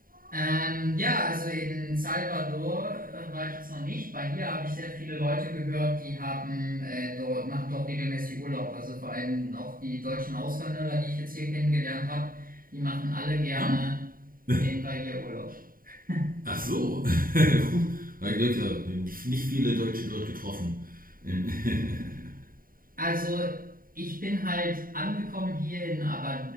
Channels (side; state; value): left; late; 0.41 ms